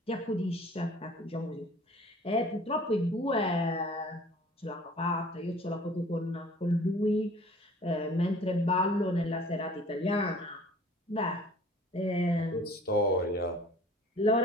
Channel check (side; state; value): both; normal; correlation 0.49